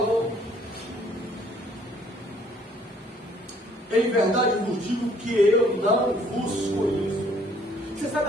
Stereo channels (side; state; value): both; normal; correlation 0.61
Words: em verdade vos digo que eu não vos conheço. Você sabe